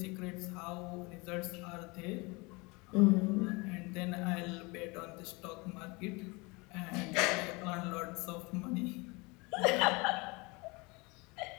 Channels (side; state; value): right; quieter; 26.7 dB